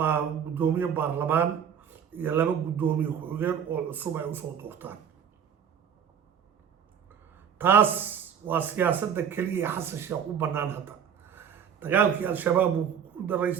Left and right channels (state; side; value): quieter; left; 8.0 dB